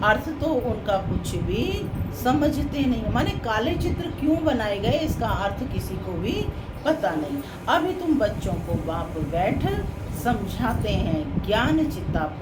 अर्थ तो उनका कुछ भी समझते नहीं। माने काले चित्र क्यों बनाए गए इसका अर्थ किसी को भी पता नहीं। अभी तुम बच्चों को बाप बैठ समझाते हैं। ज्ञान चिता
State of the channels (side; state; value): both; identical; correlation 1.00